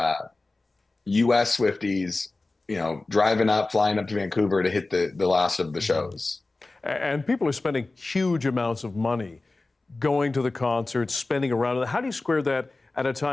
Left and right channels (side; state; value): right; quieter; 3.2 dB